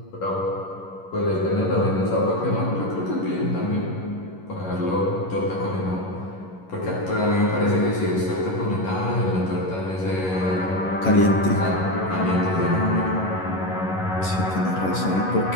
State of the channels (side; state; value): right; late; 11 ms